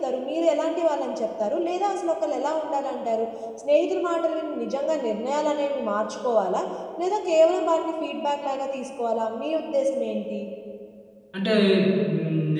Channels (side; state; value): both; identical; correlation 1.00